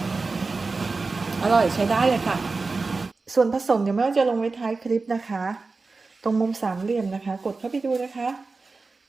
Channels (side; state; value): left; quieter; 3.9 dB